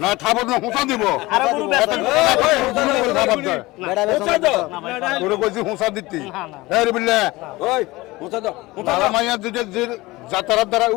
না খাবার না হোসা দিব আর গরু খাবার দে বেটা বেচা তো গরু কইছি হোসা দিতি এই রে বিল্লা ওই মুছা দাও বাবা মাইয়া যে যাতারার দ্বারা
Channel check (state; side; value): quieter; right; 20.7 dB